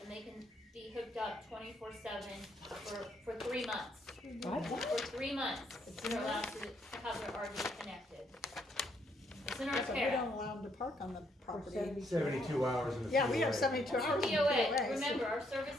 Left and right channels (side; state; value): both; normal; correlation 0.72